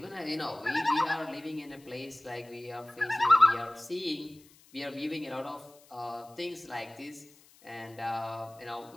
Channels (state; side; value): noise; left; hiss, 26 dB below the sound